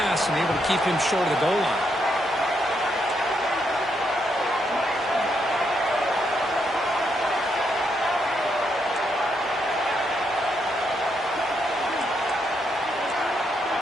and able to keep him short of the goal line.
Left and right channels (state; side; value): normal; both; correlation 0.78